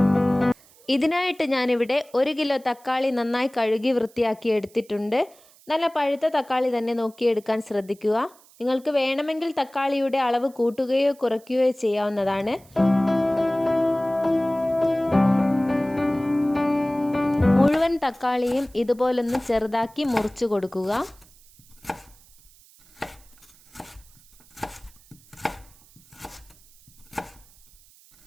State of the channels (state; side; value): noise; right; hiss, 27 dB below the sound